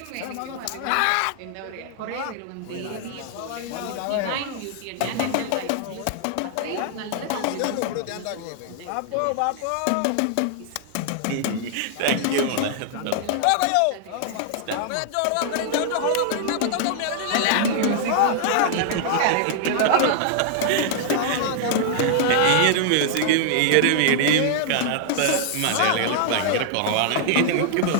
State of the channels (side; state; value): both; different; correlation -0.01